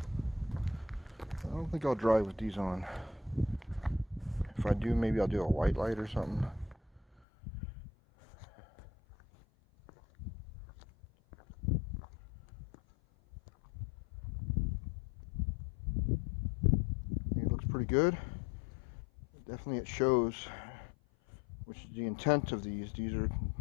I don't think I'll drive with these on. If I do, maybe I'll do a white light or something. It looks pretty good. Definitely it shows, which is the intent of these. These are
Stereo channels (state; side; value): drops out; right; at 7.2 s